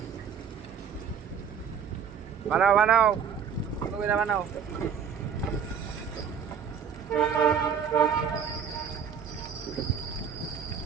বানাও বানাও বানাও।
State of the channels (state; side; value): quieter; left; 7.3 dB